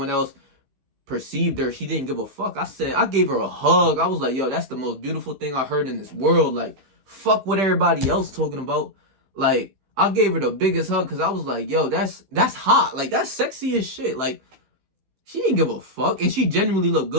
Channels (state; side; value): late; left; 15 ms